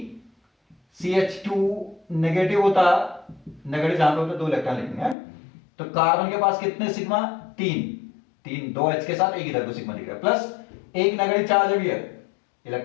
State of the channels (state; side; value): drops out; right; at 5.2 s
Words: CH2 नेगेटिव होता, नेगेटिव जहां पे होता 2 इलेक्ट्रॉन लिखेंगे, तो कार्बन के पास कितने सिग्मा? 3, 2 H के साथ एक इधर को सिग्मा दिख रहा है, प्लस एक नेगेटिव चार्ज है भैया,